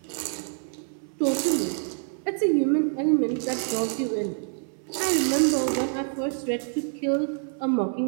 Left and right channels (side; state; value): left; silent; 61 dB below the other